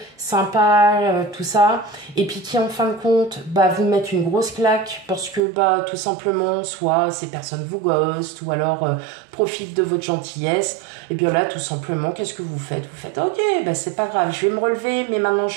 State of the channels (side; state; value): left; drops out; at 5.4 s